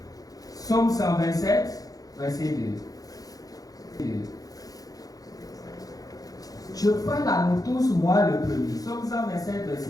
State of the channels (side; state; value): right; late; 0.18 ms